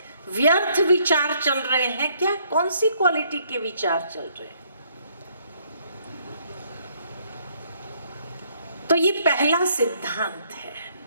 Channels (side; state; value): both; inverted; correlation -0.67